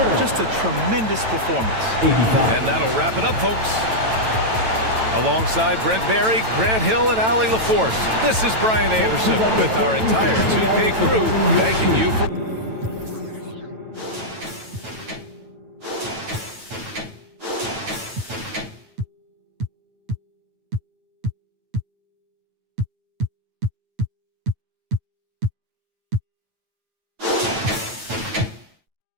Just a tremendous performance. And that'll wrap it up, folks. Alongside Brent Barry, Grant Hill, and Allie LaForce, this is Brian Anderson with our entire 2K crew thanking you for...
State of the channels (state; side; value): late; left; 9.0 ms